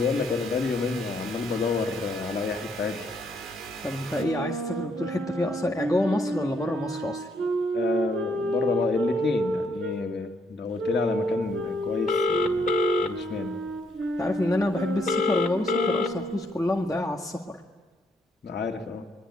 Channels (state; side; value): normal; both; correlation 0.72